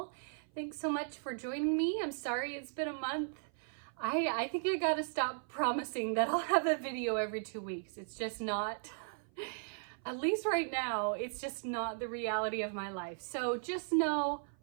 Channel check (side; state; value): left; silent; 53 dB below the other